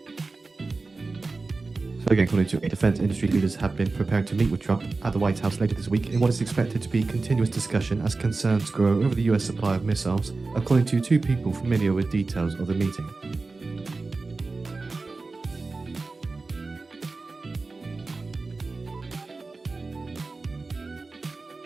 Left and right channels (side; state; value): left; quieter; 3.7 dB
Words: Again, according to defense industry leaders have been preparing to meet with Trump at the White House later this week in what is expected to be continuous discussion as concerns grow over the US supply of missiles, according to two people familiar with details of the meeting.